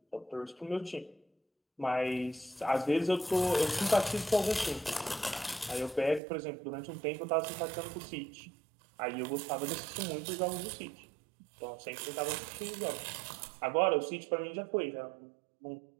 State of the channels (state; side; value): drops out; left; at 6.2 s